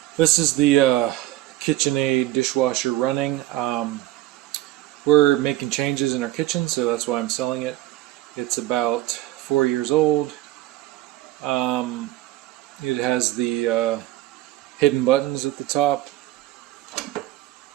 This is the KitchenAid dishwasher running. We're making changes in our kitchen, so that's why I'm selling it. It's about 4 years old. It has the hidden buttons at the top.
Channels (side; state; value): left; quieter; 16.0 dB